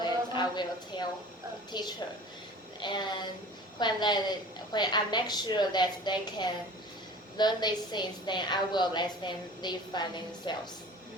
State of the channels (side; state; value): both; normal; correlation 0.42